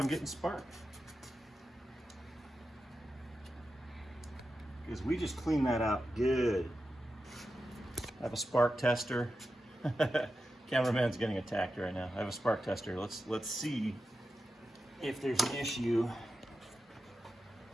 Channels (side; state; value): both; normal; correlation 0.90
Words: getting spark. Because we just cleaned that out good. I have a spark tester. Cameraman's getting attacked right now. I have a spark tester. Let's see if there's an issue.